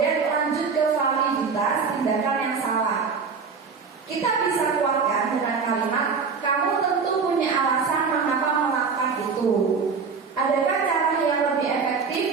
lanjut ke validitas tindakan yang salah. Kita bisa kuatkan dengan kalimat, kamu tentu punya alasan mengapa melakukan itu. Adakah cara yang lebih efektif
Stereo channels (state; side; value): quieter; left; 5.4 dB